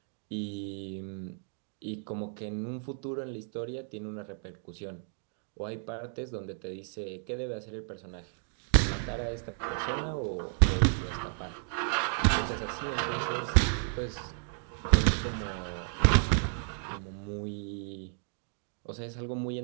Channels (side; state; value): left; silent; 56 dB below the other